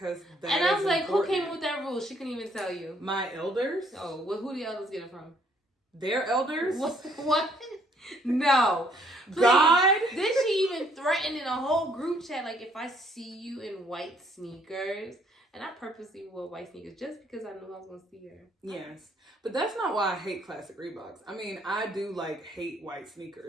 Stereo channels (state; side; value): normal; both; correlation 0.65